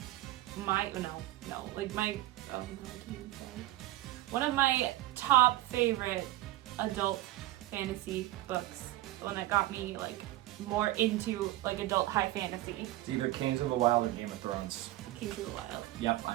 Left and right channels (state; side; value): quieter; left; 16.5 dB